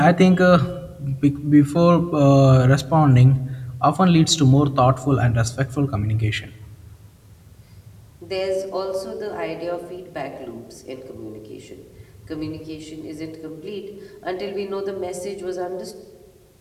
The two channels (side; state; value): both; identical; correlation 1.00